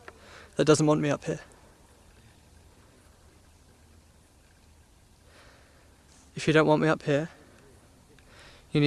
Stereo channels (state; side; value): identical; both; correlation 1.00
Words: that doesn't want me up here? If you don't want me up here, you